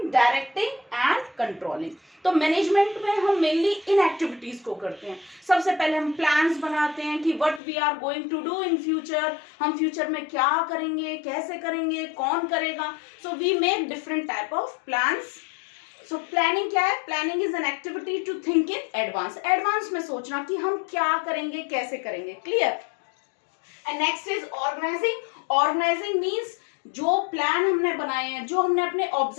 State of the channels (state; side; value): drops out; right; at 7.6 s